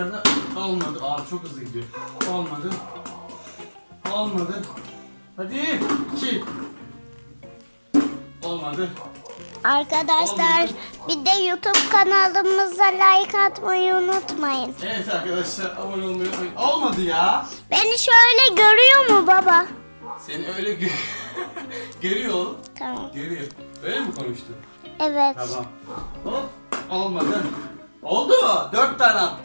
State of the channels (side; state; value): both; inverted; correlation -1.00